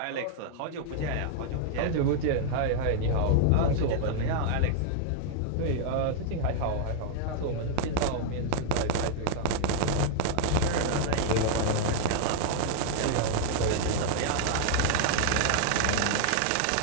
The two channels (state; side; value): different; both; correlation 0.00